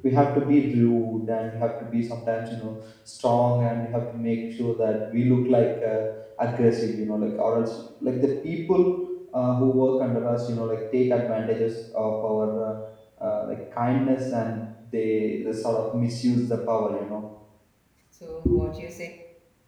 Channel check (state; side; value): identical; both; correlation 1.00